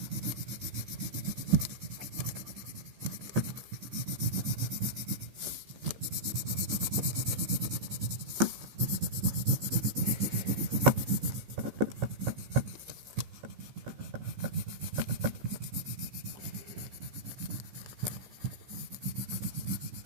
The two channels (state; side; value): late; left; 15 ms